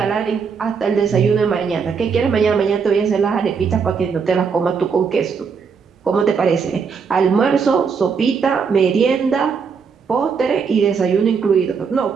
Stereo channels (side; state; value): left; quieter; 5.8 dB